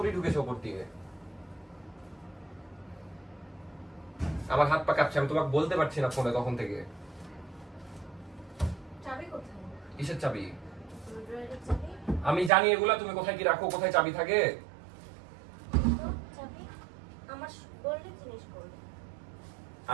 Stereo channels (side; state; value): left; drops out; at 12.5 s